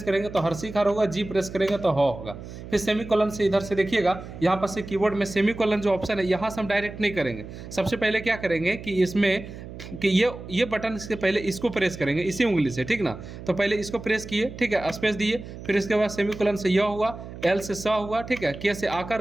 करेंगे तो हर्षिकार होगा, जी प्रेस करेंगे तो ह होगा। फिर सेमीकोलन से इधर से देखिएगा, यहाँ पर से कीबोर्ड में सेमीकोलन जो ऑप्शन है यहाँ से हम डायरेक्ट नहीं करेंगे। सबसे पहले क्या करेंगे कि इसमें कि ये बटन इसके पहले इसको प्रेस करेंगे इसी उंगली से, ठीक ना। तो पहले इसको प्रेस किए, ठीक है, स्पेस दिए, फिर इसके बाद सेमीकोलन से य हुआ, एल से स हुआ, ठीक है, के से आकार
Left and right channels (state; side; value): noise; right; hum, 12 dB below the sound